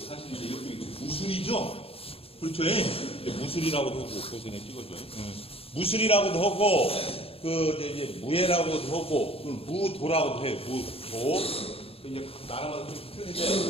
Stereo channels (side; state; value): right; late; 0.28 ms